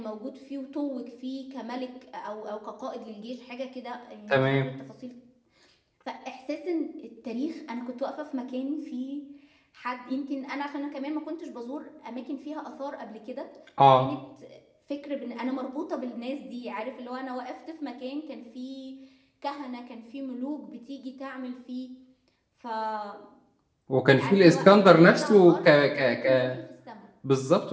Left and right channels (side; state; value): both; identical; correlation 1.00